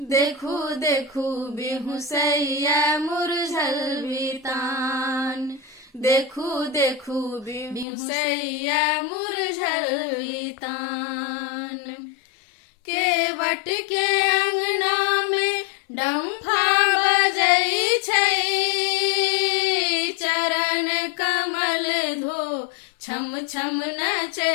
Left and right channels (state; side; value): drops out; right; at 7.9 s